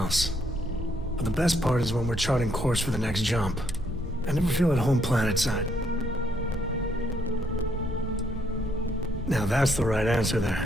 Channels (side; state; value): both; normal; correlation 0.72